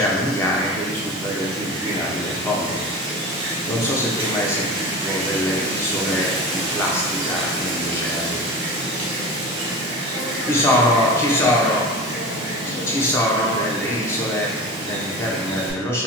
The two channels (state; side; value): normal; both; correlation 0.31